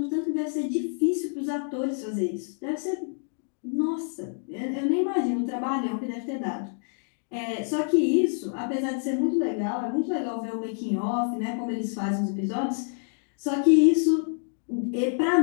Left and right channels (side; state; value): right; silent; 60 dB below the other